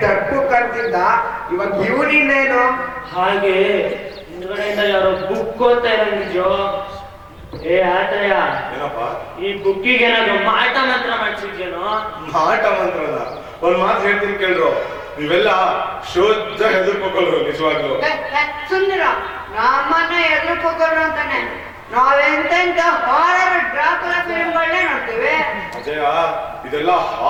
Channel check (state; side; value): identical; both; correlation 1.00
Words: ಡಪ್ಪು ಕರ್ತಿದ್ದ, ಇವಾಗ ಇವನಿನ್ನೇನು? ಹಾಗೆ ಹಿಂದ್ಗಡೆಯಿಂದ ಯಾರೋ ಬುಕ್ ಓದ್ತಾ ಇರಂಗಿದ್ಯೋ. ಏ ಆತ್ರಯ, ಏನಪ್ಪ? ಈ ಬುಕ್ಕಿಗೆ ಏನಾದ್ರು ಮಾಟ ಮಂತ್ರ ಮಾಡ್ಸಿದ್ಯೇನೋ? ಮಾಟ ಮಂತ್ರನ ಒಂದ್ ಮಾತು ಹೇಳ್ತೀನಿ ಕೇಳ್ರು. ನೀವೆಲ್ಲ ಶುದ್ಧ ಹೆದರ್ಕೋಕಲ್ರು ನಿಜವಾಗ್ಲು. ಸುಂದರ, ನಮ್ಮನ್ನ ಎದುರ್ಕೋರು ಅಂತಾನೆ ನಾವೆಂತೆಂತ ಹಾರರ್ ಡ್ರಾಕುಲಾ ಫಿಲ್ಮ್ಗಳನ್ನೇ ನೋಡ್ತೀವಿ. ಅಜಯ, ಇದೆಲ್ಲ